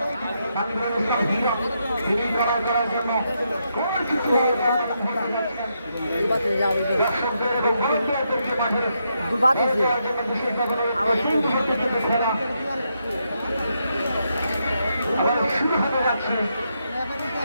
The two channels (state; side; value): inverted; both; correlation -0.80